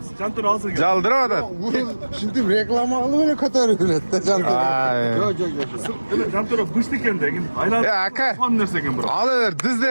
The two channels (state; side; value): inverted; both; correlation -1.00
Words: Kantora alsın. Jaldıra odat. Şimdi reklamı alıp kadar üretti canım. Evet, kantora bıştı kendi. Aylar. Ya aka. Son nerse bro. Alıver, düz